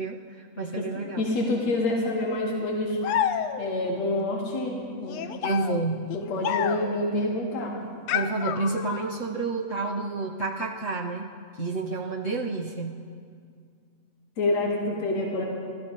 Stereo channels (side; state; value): right; late; 8.2 ms